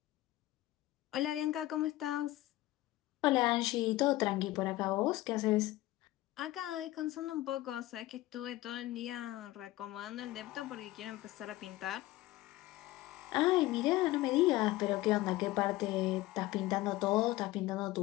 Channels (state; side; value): quieter; right; 17.2 dB